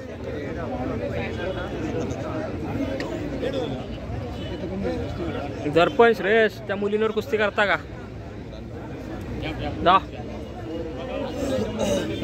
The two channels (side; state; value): both; identical; correlation 1.00